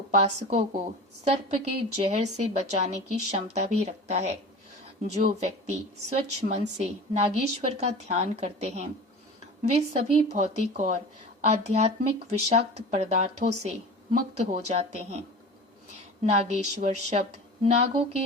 को सर्प के जहर से बचाने की क्षमता भी रखता है। जो व्यक्ति स्वच्छ मन से नागेश्वर का ध्यान करते हैं, वे सभी भौतिक और आध्यात्मिक विषाक्त पदार्थों से मुक्त हो जाते हैं। नागेश्वर शब्द नागों के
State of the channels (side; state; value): both; normal; correlation 0.35